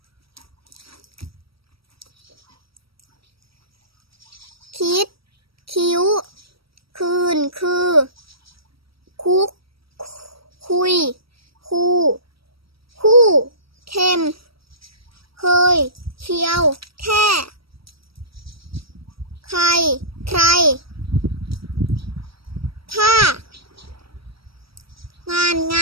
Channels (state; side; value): late; left; 0.75 ms